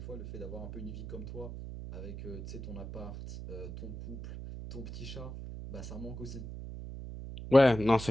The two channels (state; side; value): noise; right; hum, 9 dB below the sound